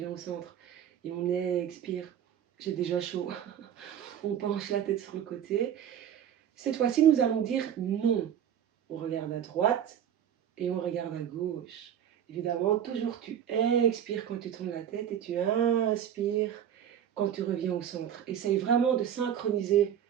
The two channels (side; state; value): left; quieter; 9.5 dB